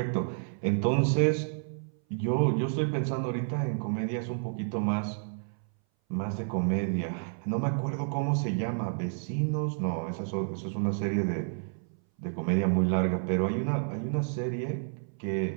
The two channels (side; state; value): left; silent; 58 dB below the other